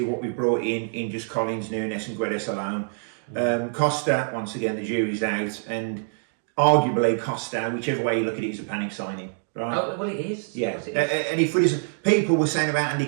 what we brought in just Collins, Nunes, and Guedes alone. Costa, once again, the jury's out, and arguably Costa, whichever way you look at it, is a panic signing. Right. Oh, well, it is. Yeah. And if we just, people were saying about Andy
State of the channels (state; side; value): silent; left; digital silence